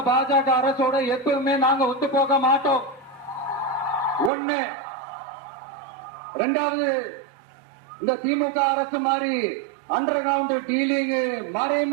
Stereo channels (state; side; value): drops out; left; at 4.3 s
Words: பாஜக அரசோட எப்பவுமே நாங்க ஒத்து போக மாட்டோம். ஒண்ணு. ரெண்டாவது, இந்த திமுக அரசு மாதிரி அண்டர் கிரவுண்ட் டீலிங்,